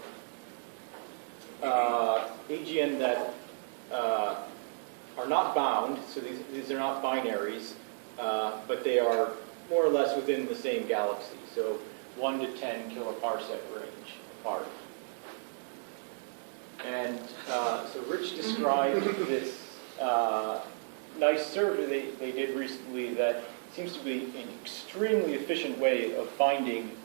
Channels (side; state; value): left; silent; digital silence